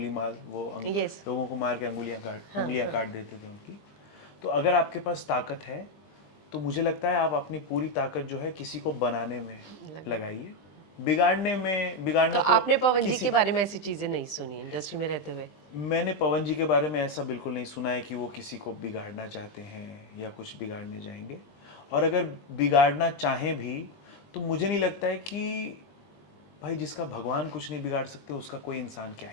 माल, वो Yes. लोगों को मार के उंगलियां काट देते थे उनकी. तो अगर आपके पास ताकत है तो मुझे लगता है आप अपनी पूरी ताकत जो है किसी को बनाने में लगाइए. बिगाड़ना तो आपने पवन जी के बारे में ऐसी चीजें नहीं सुनी इंडस्ट्री में रहते हुए? मैंने पवन जी के बारे में ऐसा बिल्कुल नहीं सुना है कि वो किसी को बिगाड़ना चाहते हैं या कुछ बिगाड़ने जाएंगे. और अगर बिगाड़ना चाहें भी तो मुझे नहीं लगता है कि भाई जिसका भगवान कुछ नहीं बिगाड़ सकते उसका कोई इंसान क्या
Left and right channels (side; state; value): right; late; 20 ms